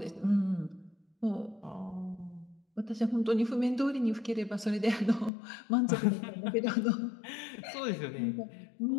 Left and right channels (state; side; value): drops out; right; at 5.3 s